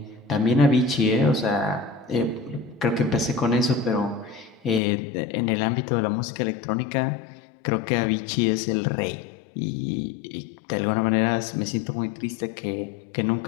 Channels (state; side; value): drops out; right; at 4.8 s